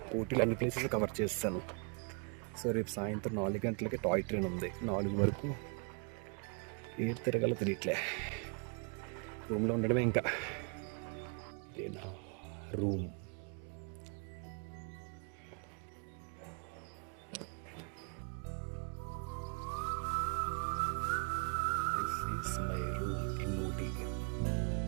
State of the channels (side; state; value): left; quieter; 37.1 dB